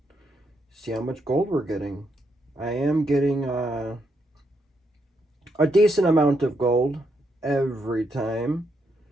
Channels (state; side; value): normal; both; correlation 0.78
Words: see how much gold we're getting. I am getting a decent amount of gold every time.